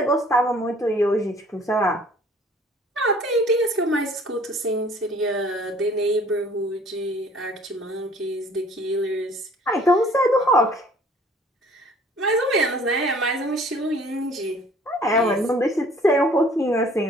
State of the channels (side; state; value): both; normal; correlation 0.54